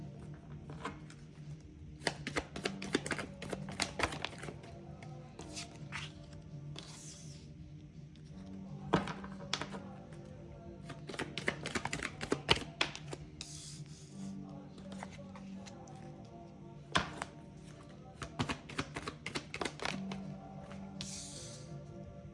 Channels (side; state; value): both; identical; correlation 1.00